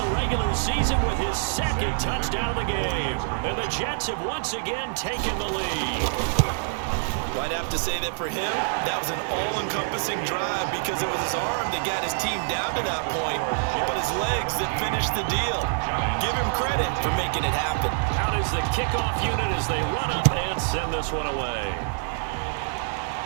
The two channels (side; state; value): left; silent; 61 dB below the other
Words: regular season with his second touchdown of the game. And the Jets have once again taken the lead. Well, I'd have to say that for him, that was an all-encompassing drive because it was his arm that got his team down to that point, but his legs that finished the deal. Give him credit for making it happen. Out is the kickoff unit as they run up and send this one away.